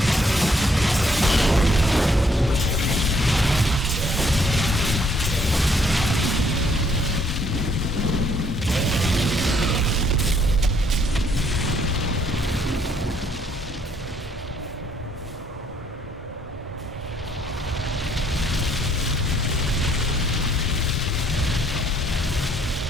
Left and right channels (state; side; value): normal; both; correlation 0.66